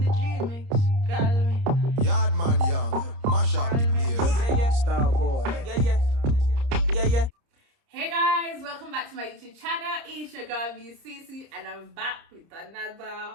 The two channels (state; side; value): late; left; 30 ms